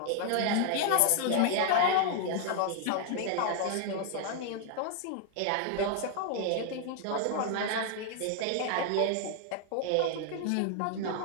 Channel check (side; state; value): both; different; correlation 0.00